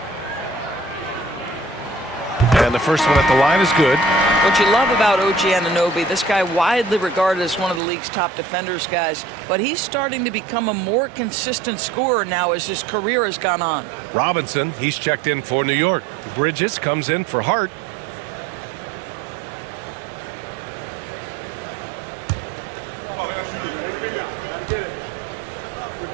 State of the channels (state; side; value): drops out; left; at 7.8 s